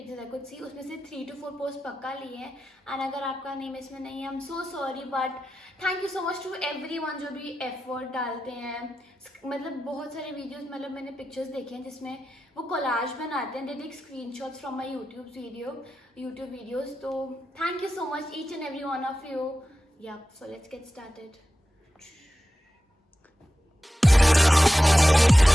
आई कुड सी उसमें से 3 to 4 पोस्ट पक्का लिए हैं. एंड अगर आपका नेम इसमें नहीं है, I am so sorry, but thank you so much to everyone जो भी एफर्ट डालते हैं. मतलब बहुत सारे वीडियोस मतलब मैंने पिक्चर्स देखे हैं जिसमें वो कोलाज बनाते हैं, they take screenshots from my YouTube videos. तो thank you so much each and every one of you. Yeah so let's get started.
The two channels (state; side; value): normal; both; correlation 0.93